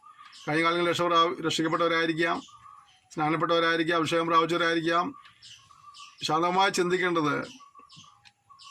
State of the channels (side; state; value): both; identical; correlation 1.00